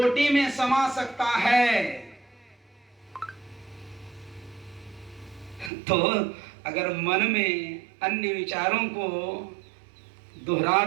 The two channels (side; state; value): left; drops out; at 5.7 s